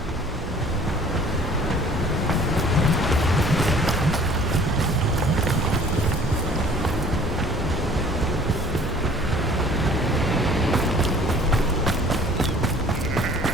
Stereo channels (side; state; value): both; normal; correlation 0.52